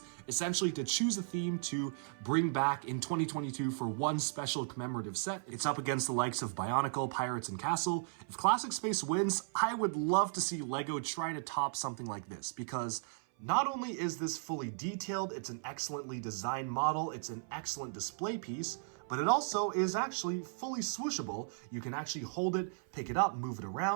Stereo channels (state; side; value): silent; left; 54 dB below the other